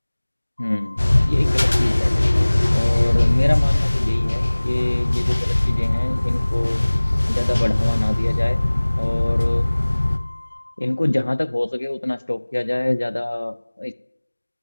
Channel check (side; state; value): both; inverted; correlation -1.00